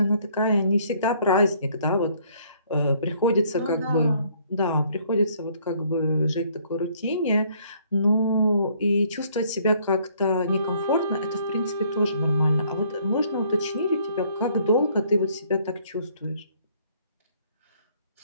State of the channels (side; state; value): both; inverted; correlation -0.63